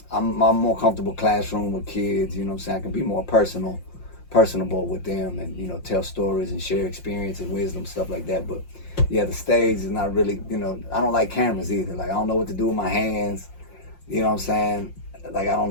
I'm more comfortable classroom with kids. You know what I'm saying? I can be more personable with them, and you know, tell stories and share experience and wisdom, stuff like that. But yeah, the stage is not really. You know, I don't like cameras either. Like I don't know what to do with my hands. You know what I'm saying? Like I don't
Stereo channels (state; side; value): late; right; 5.6 ms